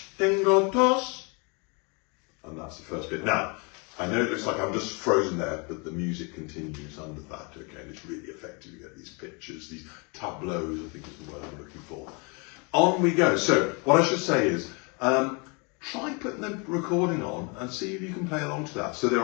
Tengo tos, and that's the first bit. Now, I know it looks like I'm just frozen there, but the music continues under that, okay, and it's really effective. You get these pictures, these tableaus, I think is the word I'm looking for. On we go. So, what I should say is, try putting the recording on and see if you can play along to that. So there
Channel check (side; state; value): right; quieter; 32.3 dB